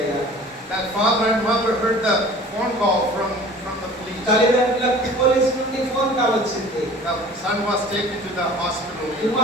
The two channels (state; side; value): normal; both; correlation 0.45